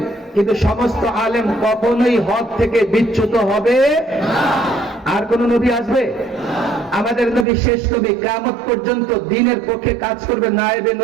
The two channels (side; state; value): left; drops out; at 7.5 s